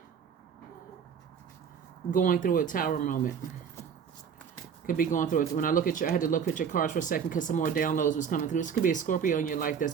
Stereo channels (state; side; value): quieter; left; 7.2 dB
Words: going through a tower moment. Could be going through it. When I look at I had to look at your cards for a second because some more downloads was coming through. This could be a Scorpio in your life that's